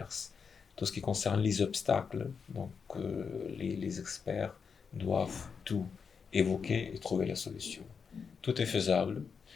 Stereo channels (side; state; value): right; quieter; 5.9 dB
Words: tout ce qui concerne les obstacles. Donc, les experts doivent tout évoquer et trouver la solution. Tout est faisable.